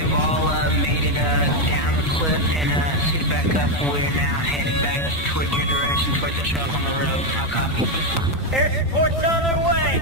all made it down the cliff and suited back up. We're now heading back towards your direction, towards the truck on the road. I'll copy. Air support's on their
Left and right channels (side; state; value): both; normal; correlation 0.05